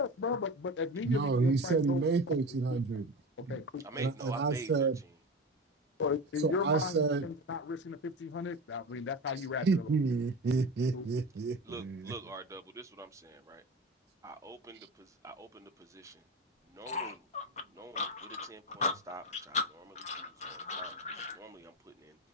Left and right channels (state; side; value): normal; both; correlation 0.28